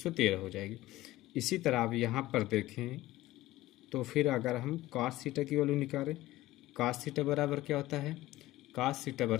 हो जाएगी। इसी तरह आप यहाँ पर देखें तो फिर अगर हम कॉस थीटा की वैल्यू निकालें, कॉस थीटा बराबर क्या होता है, कॉस थीटा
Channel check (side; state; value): right; quieter; 16.8 dB